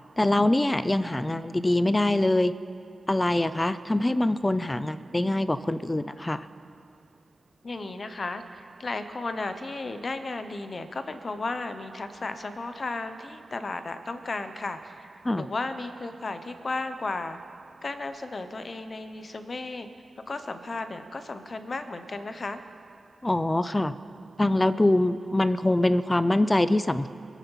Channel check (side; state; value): both; normal; correlation 0.98